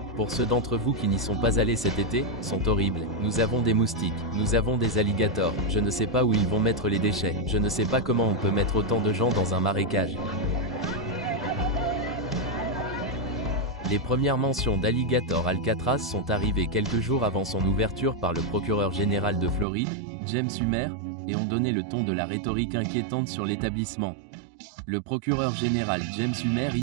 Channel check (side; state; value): left; drops out; at 19.7 s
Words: pour ceux d'entre vous qui n'y sont pas allés cet été, sont horribles. Nous avons des moustiques, nous avons des alligators, je ne sais pas où ils vont mettre les déchets, je ne sais pas comment on peut mettre autant de gens dans un marécage. Les premières mentions d'Alligator Alcatraz sont arrivées quelques jours avant son ouverture par le procureur général de Floride, James Humer, et ont donné le ton de la rhétorique inquiétante sur l'établissement. Le procureur général James Humer